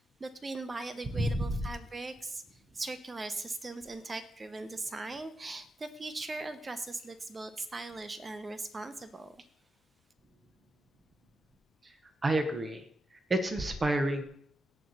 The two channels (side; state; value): both; normal; correlation 0.87